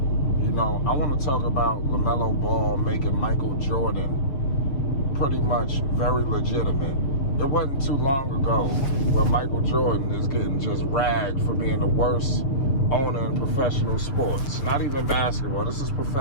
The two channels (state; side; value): late; right; 7.5 ms